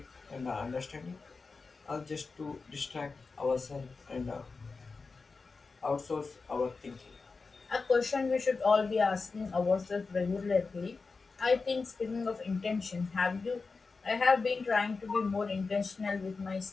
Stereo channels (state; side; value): quieter; right; 4.3 dB